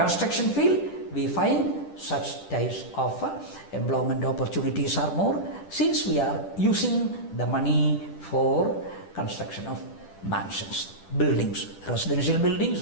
field, we find such types of employment opportunities are more, since we are using the money for construction of mansions, buildings, residential buildings,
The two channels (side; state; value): right; late; 10 ms